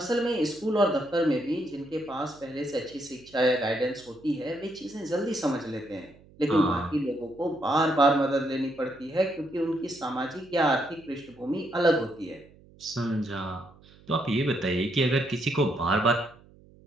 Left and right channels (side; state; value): right; noise; hum, 25 dB below the sound